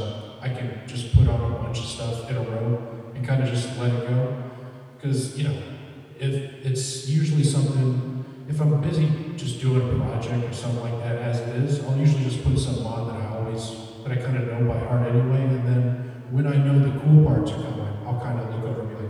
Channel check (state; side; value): identical; both; correlation 1.00